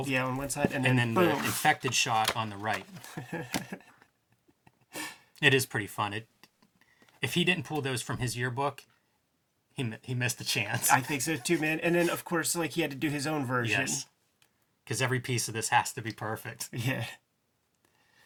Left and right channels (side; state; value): both; identical; correlation 1.00